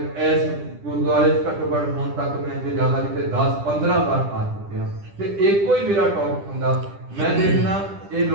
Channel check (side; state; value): left; late; 10 ms